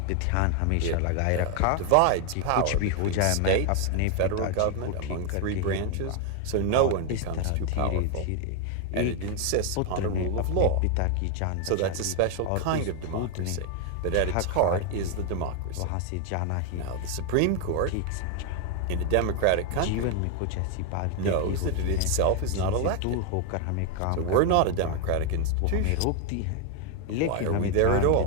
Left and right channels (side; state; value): both; different; correlation 0.01